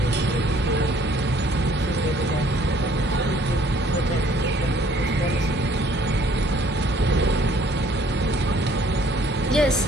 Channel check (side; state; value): both; normal; correlation 0.59